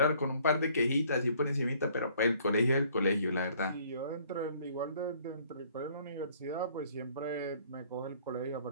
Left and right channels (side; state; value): both; inverted; correlation -0.59